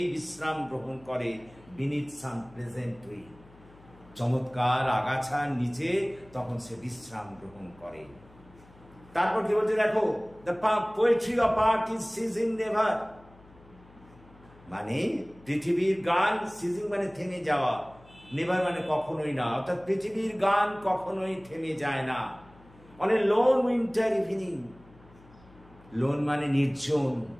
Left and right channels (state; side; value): noise; left; hum, 25 dB below the sound